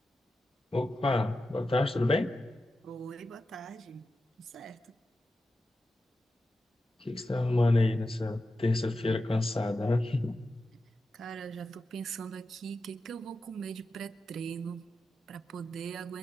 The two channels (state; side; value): normal; both; correlation 0.91